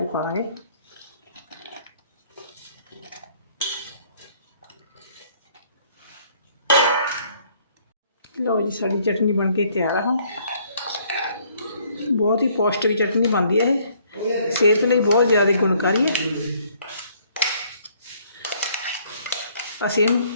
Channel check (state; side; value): inverted; both; correlation -0.62